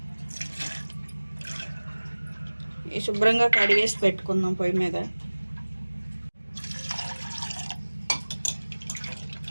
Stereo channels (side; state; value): both; inverted; correlation -1.00